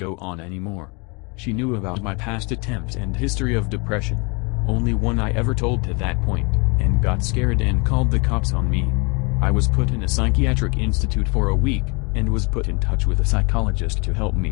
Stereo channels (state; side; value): quieter; right; 31.0 dB